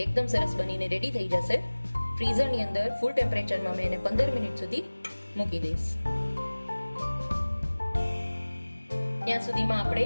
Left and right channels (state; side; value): inverted; both; correlation -1.00